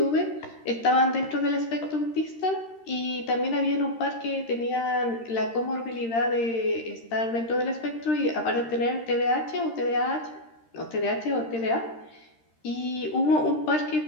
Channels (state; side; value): late; right; 13 ms